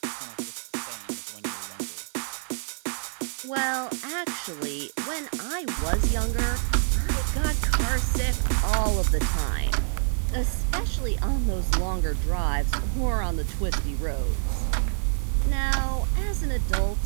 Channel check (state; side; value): silent; left; digital silence